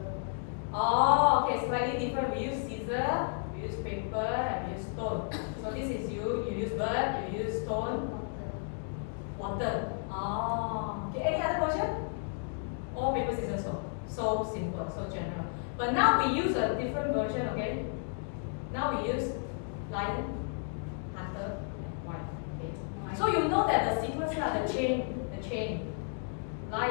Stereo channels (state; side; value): silent; right; 56 dB below the other